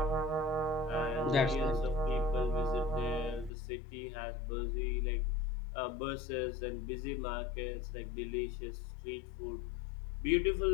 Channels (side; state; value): right; drops out; at 3.5 s